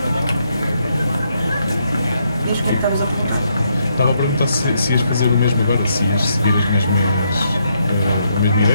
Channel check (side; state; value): both; inverted; correlation -0.76